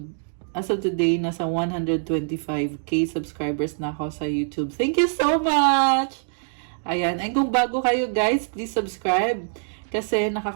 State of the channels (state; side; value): silent; left; digital silence